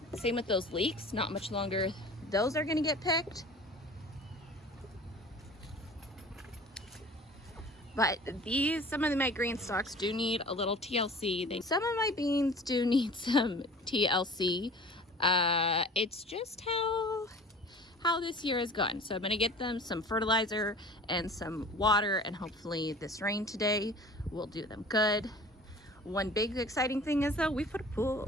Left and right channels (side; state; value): both; normal; correlation 0.43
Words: Same with those leeks. Not much longer those are going to get picked. But some of my green stalks do need a little TLC. Some of my beans do need some TLC. It's just how this year has gone. So I'm gonna get them some fertilizer and some water, and hopefully this rain today will do them good. One big exciting thing is though, we put a